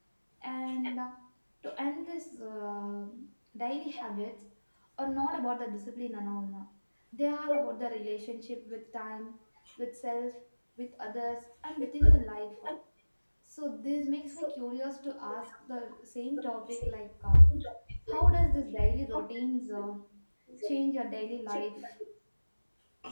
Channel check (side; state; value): both; inverted; correlation -1.00